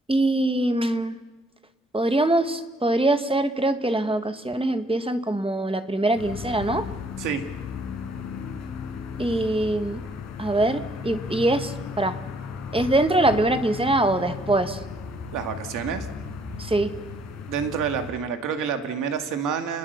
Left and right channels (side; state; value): both; normal; correlation 0.65